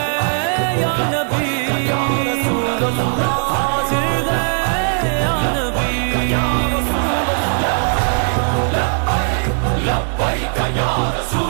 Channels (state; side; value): silent; left; digital silence